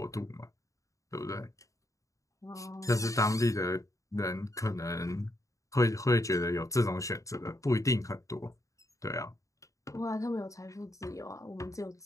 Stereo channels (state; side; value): late; right; 0.16 ms